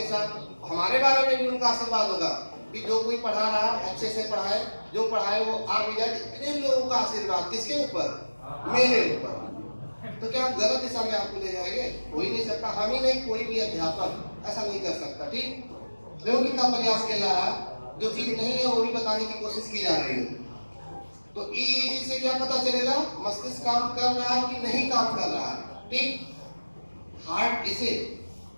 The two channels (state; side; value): inverted; both; correlation -1.00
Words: साथ, हमारे बारे में भी उनका आशीर्वाद होगा कि जो कोई पढ़ा रहा है अच्छे से पढ़ाए, जो पढ़ाए वो आ भी जाए। इतने लोगों का आशीर्वाद किसके ऊपर, मेरे ऊपर। तो क्या गलत दिशा में आपको ले जाएंगे, हो ही नहीं सकता। हम ही नहीं, कोई भी अध्यापक ऐसा नहीं कर सकता। ठीक, देखो कितना प्रयास किया जा रहा है, जो चीज नहीं है वो भी बताने की कोशिश की जा रही है। तो ईईजी से क्या पता चलेगा, मस्तिष्क काम कर रहा है कि नहीं काम कर रहा है। ठीक, हार्ट इसे